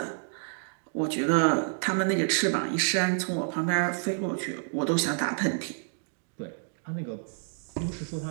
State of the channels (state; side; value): silent; left; 59 dB below the other